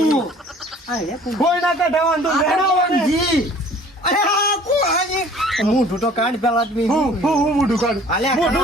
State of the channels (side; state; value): both; normal; correlation 0.51